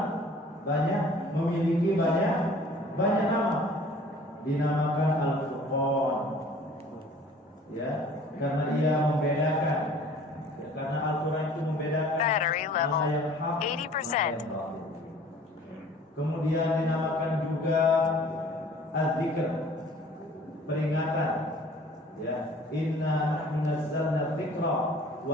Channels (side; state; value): both; normal; correlation 0.50